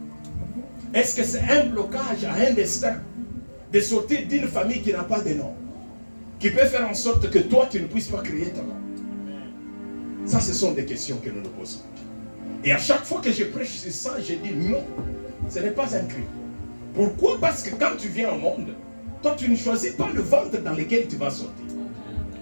Est-ce que c'est un blocage à un destin de sortir d'une famille qui n'a pas de nom, qui peut faire en sorte que toi tu ne puisses pas créer ton nom? Ça, ce sont des questions que nous nous posons. Et à chaque fois que je prêche sur ça, je dis non, ce n'est pas un crime. Pourquoi? Parce que quand tu viens au monde, toi tu ne choisis pas le ventre dans lequel tu vas sortir.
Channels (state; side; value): inverted; both; correlation -1.00